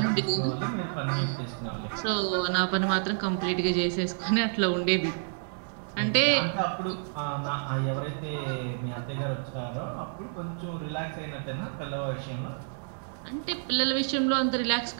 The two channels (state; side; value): silent; left; digital silence